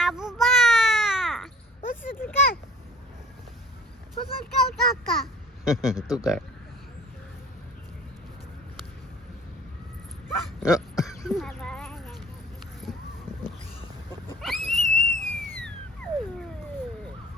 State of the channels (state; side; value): normal; both; correlation 0.48